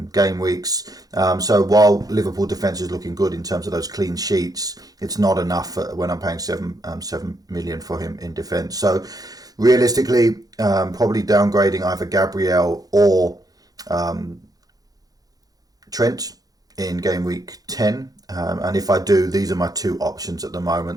game weeks. So while Liverpool defence is looking good in terms of those clean sheets, it's not enough when I'm paying 7 million for him in defence. So realistically, probably downgrading either Gabriel or Trent in game week 10. And if I do, these are my two options at the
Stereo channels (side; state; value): left; late; 0.18 ms